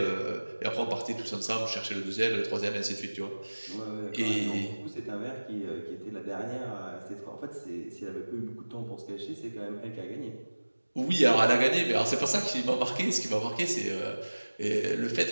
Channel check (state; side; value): inverted; both; correlation -1.00